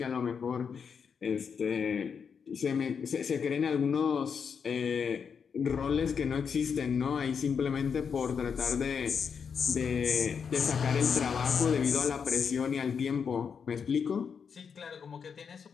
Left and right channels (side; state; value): right; quieter; 6.5 dB